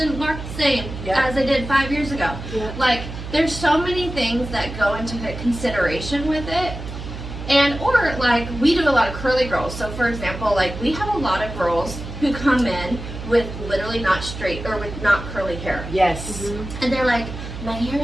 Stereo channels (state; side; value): noise; right; hum, 9 dB below the sound